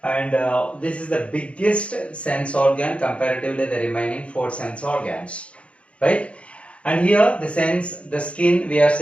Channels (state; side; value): late; right; 0.061 ms